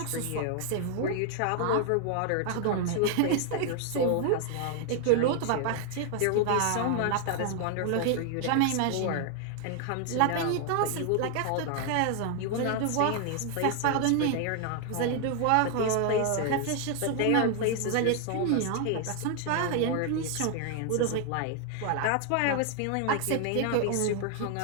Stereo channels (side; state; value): both; different; correlation 0.00